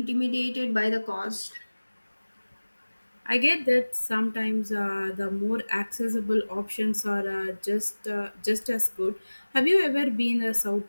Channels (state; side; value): inverted; both; correlation -1.00